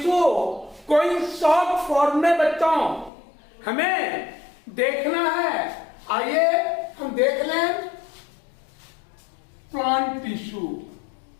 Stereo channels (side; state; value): right; drops out; at 3.1 s